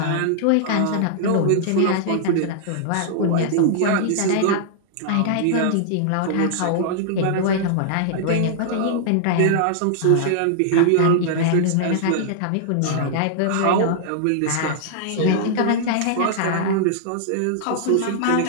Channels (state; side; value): different; both; correlation -0.01